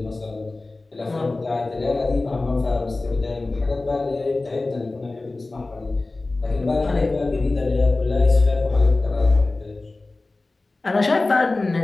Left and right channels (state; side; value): quieter; right; 3.2 dB